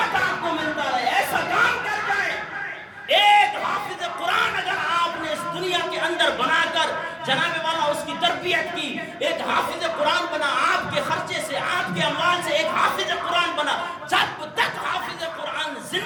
آپ کو ملتا رہے. ایسا کام کر جائیں. ایک حافظ قرآن اگر آپ نے اس دنیا کے اندر بنا کر جناب والا اس کی تربیت کی, ایک حافظ قرآن بنا, آپ کے خرچے سے آپ کے اموال سے ایک حافظ قرآن بنا, جب تک حافظ قرآن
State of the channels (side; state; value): both; identical; correlation 1.00